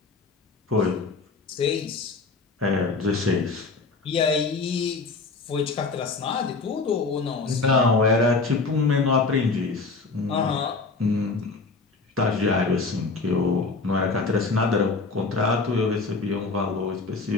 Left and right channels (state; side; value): quieter; right; 4.0 dB